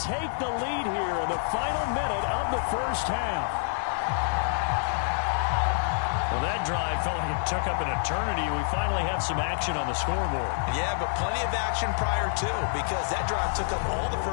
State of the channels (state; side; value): silent; right; digital silence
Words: take the lead here in the final minute of the first half. Well, that drive felt like it took up an eternity. We finally have some action on the scoreboard. Yeah, but plenty of action prior to, because that drive took up all the